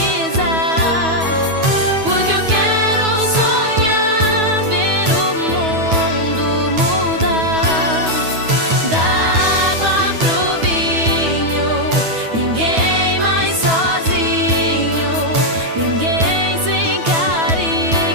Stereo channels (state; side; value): late; left; 9.3 ms